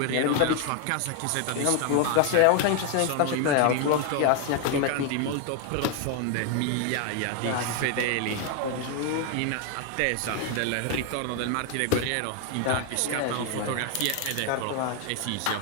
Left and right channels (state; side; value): different; both; correlation 0.00